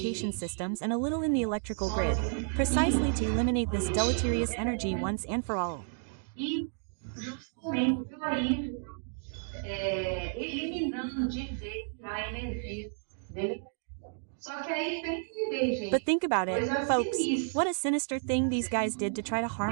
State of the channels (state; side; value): silent; left; digital silence